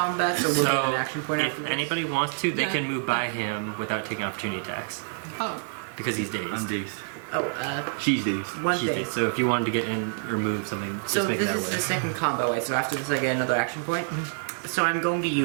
so we'll get an action point if after this? anybody wants to, they Yeah. can move by him without taking opportunity attacks. Oh, Because he's dazed. I'm dazed. Oh, She's dazed. one He's thing. dazed. So if you wanted to get in or move something, So just make this that is way. the second combo way, so after this I get another action point? So I'm going to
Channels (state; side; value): silent; left; 60 dB below the other